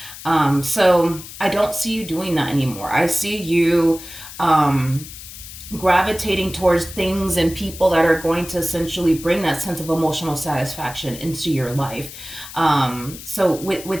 So I don't see you doing that anymore. I see you gravitating towards things and people that are going to essentially bring that sense of emotional satisfaction into your life. So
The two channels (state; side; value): noise; left; hiss, 14 dB below the sound